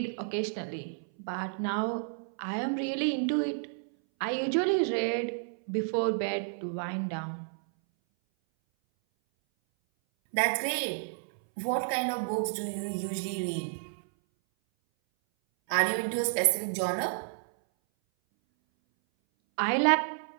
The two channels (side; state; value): left; silent; 57 dB below the other